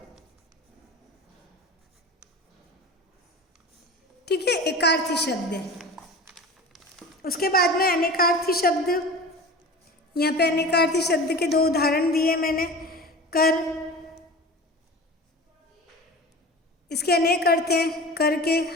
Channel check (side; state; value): both; normal; correlation 0.35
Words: ठीक है, एकार्थी शब्द है। उसके बाद में अनेकार्थी शब्द, यहाँ पे अनेकार्थी शब्द के 2 उदाहरण दिए मैंने। कर, इसके अनेक अर्थ हैं, कर के